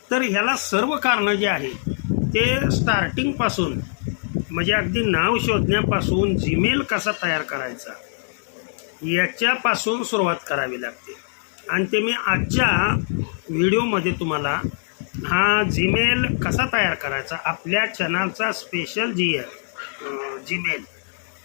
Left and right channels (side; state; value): right; silent; 59 dB below the other